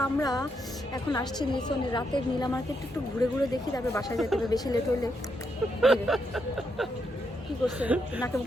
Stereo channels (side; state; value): both; normal; correlation 0.80